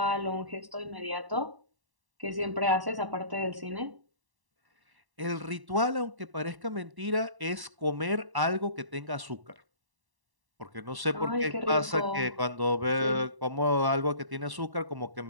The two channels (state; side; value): late; left; 1.1 ms